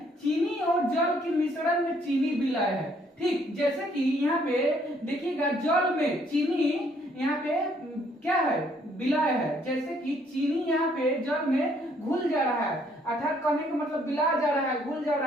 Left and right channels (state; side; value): normal; both; correlation 0.66